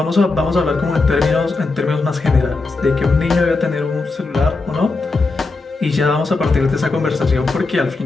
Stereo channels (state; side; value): quieter; right; 3.7 dB